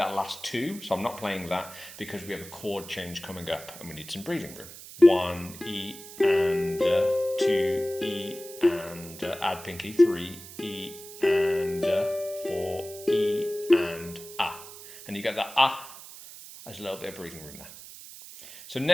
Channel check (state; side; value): noise; right; hiss, 15 dB below the sound